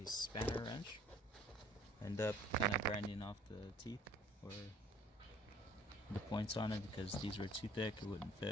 spanner wrench. End up kind of grinding off the teeth or the points on it because these were too thick, it wouldn't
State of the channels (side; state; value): both; normal; correlation 0.54